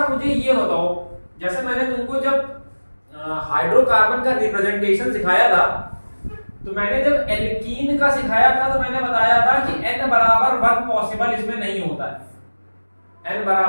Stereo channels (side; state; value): both; inverted; correlation -1.00